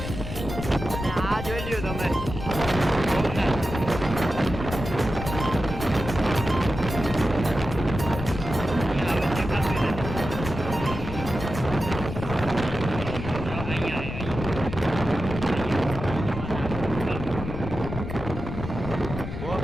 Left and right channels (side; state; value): left; noise; rumble, 7 dB below the sound